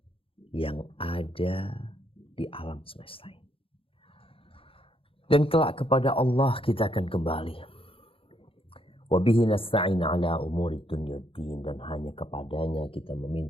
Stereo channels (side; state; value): right; late; 0.27 ms